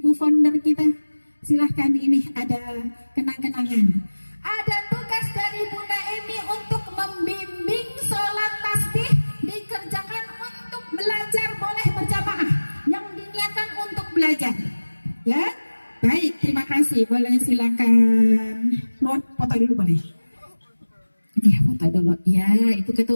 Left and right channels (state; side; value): inverted; both; correlation -1.00